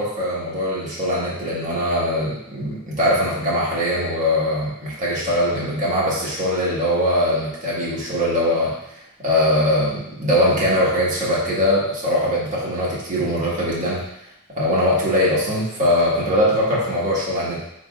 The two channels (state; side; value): normal; both; correlation -0.09